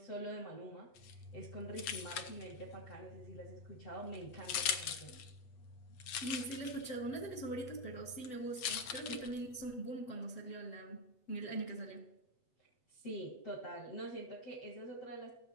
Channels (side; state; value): right; late; 8.0 ms